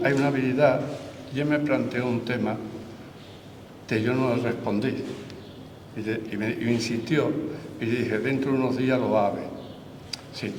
hay una habilidad. Yo me planteé un tema que yo no le respondí, y me insistió, y dije: dentro de unos días lo va a ver. Si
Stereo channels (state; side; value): identical; both; correlation 1.00